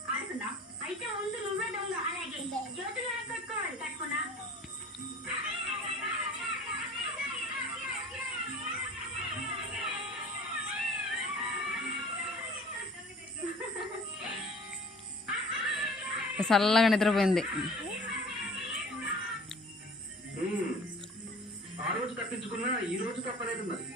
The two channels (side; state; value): both; normal; correlation 0.45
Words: ఆడుకున్నా. అయితే ముందు నువ్వే దొంగ. అలాగే జ్యోతులు కట్టుకోవాలి. కట్టుకున్నా. చల్లగా నిద్రపోయింది. ఆ రోజు తప్పించుకున్నా ఈ రోజు తప్పలేదు మరి.